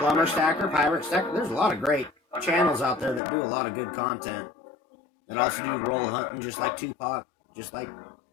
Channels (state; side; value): drops out; right; at 3.2 s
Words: Stacker, Pirate Stacker. There's a lot of great channels out there that do a lot of good content. That also do roll hunting, just like Tupac, just like,